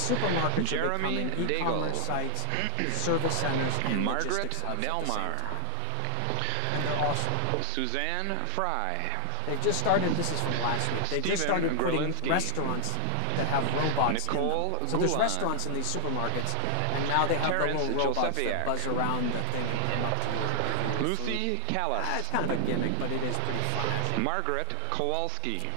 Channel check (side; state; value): both; different; correlation 0.00